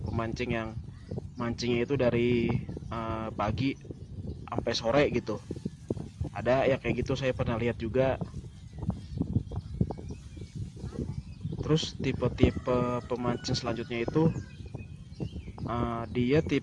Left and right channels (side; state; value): both; identical; correlation 1.00